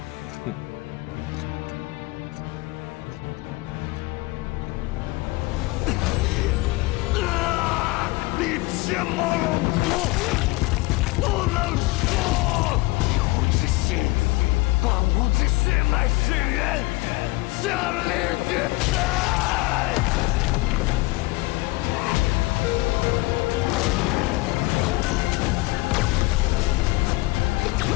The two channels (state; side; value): quieter; right; 21.9 dB